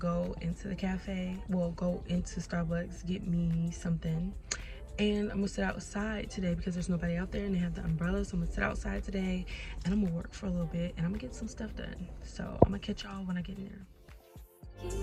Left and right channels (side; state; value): both; identical; correlation 1.00